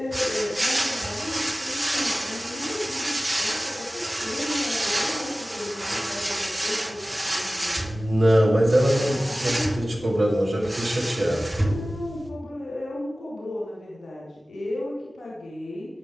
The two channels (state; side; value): normal; both; correlation 0.97